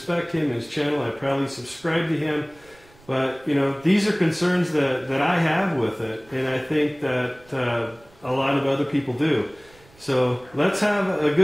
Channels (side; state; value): right; noise; rumble, 28 dB below the sound